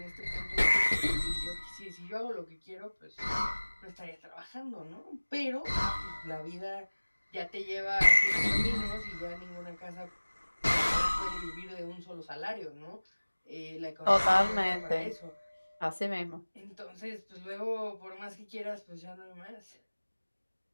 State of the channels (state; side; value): inverted; both; correlation -1.00